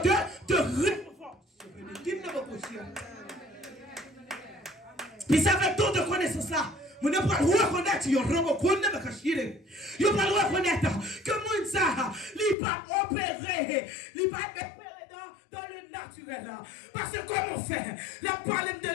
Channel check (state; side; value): drops out; right; at 12.6 s